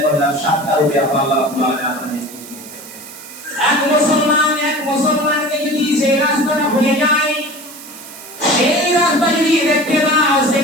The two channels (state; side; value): noise; right; hiss, 16 dB below the sound